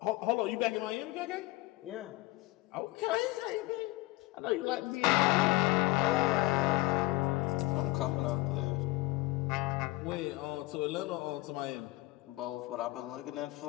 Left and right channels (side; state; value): right; quieter; 20.0 dB